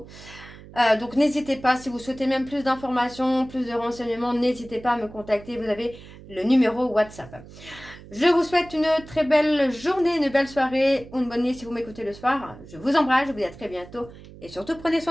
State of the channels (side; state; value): right; noise; hum, 18 dB below the sound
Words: Donc n'hésitez pas, si vous souhaitez même plus d'informations, plus de renseignements, n'hésitez pas à me contacter, vous avez le numéro WhatsApp. Je vous souhaite une très belle journée, une belle soirée ou une bonne nuit si vous m'écoutez le soir. Je vous embrasse, je vous dis à très bientôt et surtout prenez